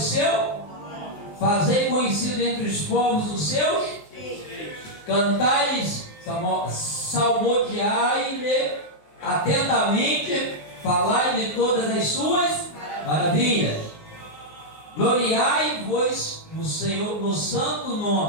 fazei conhecido entre os povos os seus, cantai-lhes, salmodiai-lhe atentamente, falai-lhe todas as suas maravilhas. Gloriai-vos no Senhor, no santo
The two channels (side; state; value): right; late; 19 ms